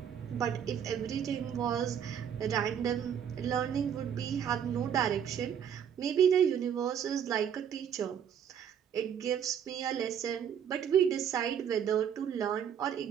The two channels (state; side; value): quieter; left; 8.5 dB